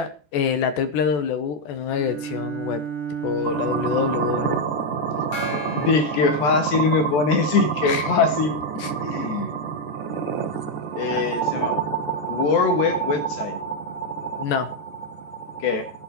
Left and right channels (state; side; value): late; right; 14 ms